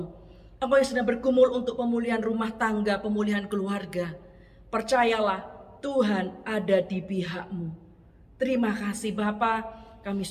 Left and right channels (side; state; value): both; identical; correlation 1.00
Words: Engkau yang sedang bergumul untuk pemulihan rumah tangga, pemulihan keluarga, percayalah Tuhan ada di pihak-Mu. Terima kasih Bapa, kami